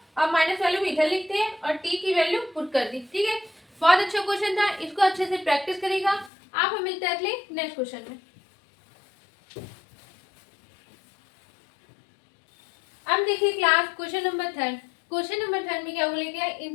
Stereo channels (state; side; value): drops out; right; at 6.3 s